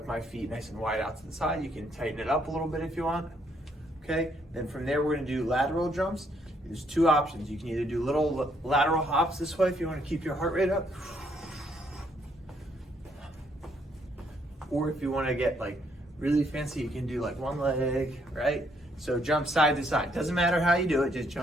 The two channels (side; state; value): both; normal; correlation 0.71